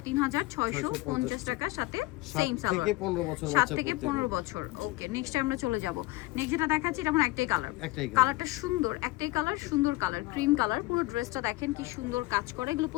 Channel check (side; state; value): right; quieter; 20.4 dB